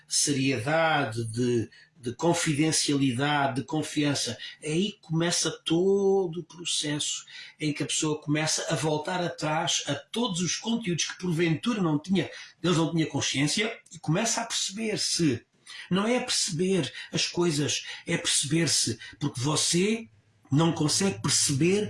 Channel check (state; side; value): identical; both; correlation 1.00